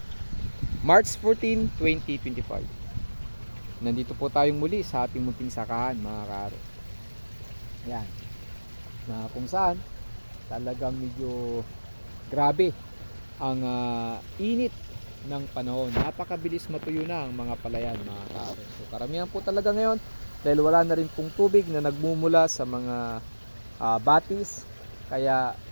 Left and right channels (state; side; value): inverted; both; correlation -1.00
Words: March 14, 2025. Nandito po tayong muli sa ating munting sakahan mga kaaro. Yan. Na kung saan talagang medyo grabe ang init ng panahon. Napakabilis matuyo na ang mga palayan mga kaaro. So karamihan po talaga ngayon dahil wala na rin pong tubig na nagmumula sa mga batis. Kaya